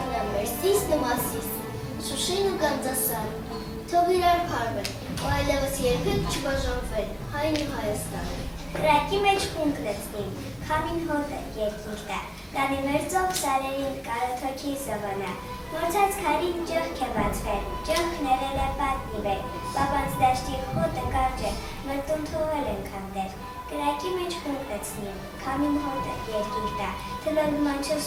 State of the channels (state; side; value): identical; both; correlation 1.00